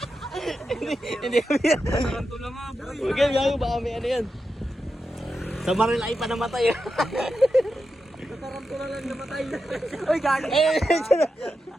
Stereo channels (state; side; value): normal; both; correlation 0.89